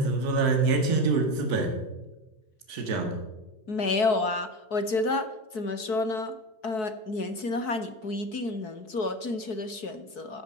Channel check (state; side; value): late; right; 4.6 ms